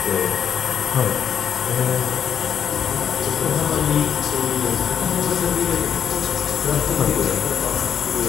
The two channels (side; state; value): right; quieter; 8.2 dB